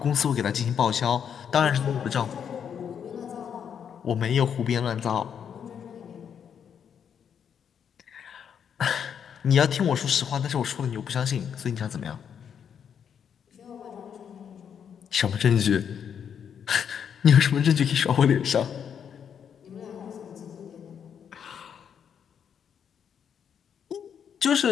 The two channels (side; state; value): right; quieter; 7.9 dB